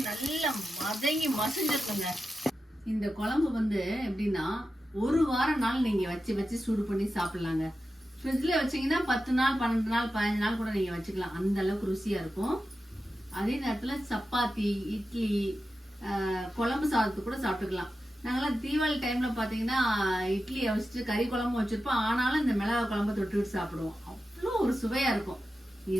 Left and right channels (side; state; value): both; normal; correlation 0.91